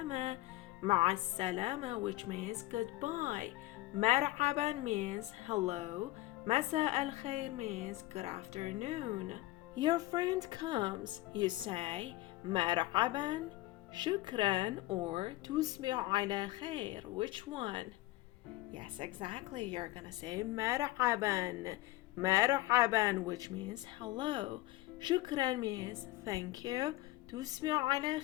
مع السلامة, which means goodbye. مرحبا means hello. مساء الخير means good afternoon. Your friend comes. You say مرحبا, شكرا, or تصبح على خير. Which one? Yes, exactly. You're gonna say مرحبا. مرحبا, which means hello. شكرا means thank you. تصبح على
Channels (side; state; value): right; quieter; 17.8 dB